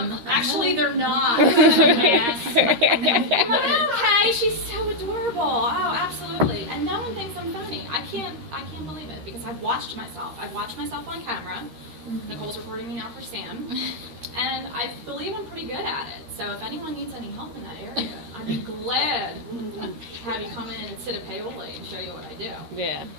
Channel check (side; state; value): left; late; 13 ms